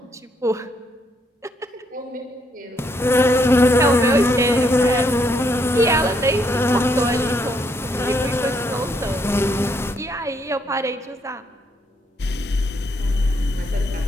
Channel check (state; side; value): normal; both; correlation 0.74